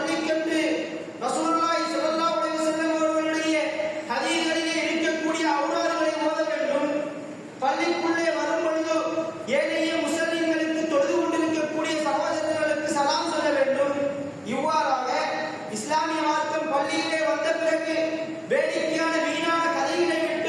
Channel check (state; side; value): identical; both; correlation 1.00